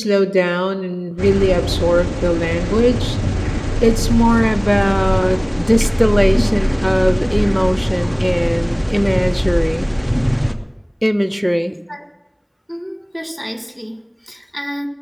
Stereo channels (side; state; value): both; identical; correlation 1.00